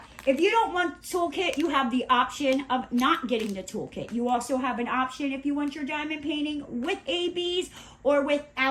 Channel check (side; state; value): both; identical; correlation 1.00